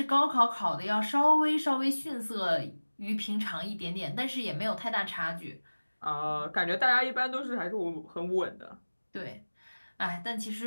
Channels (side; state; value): both; inverted; correlation -1.00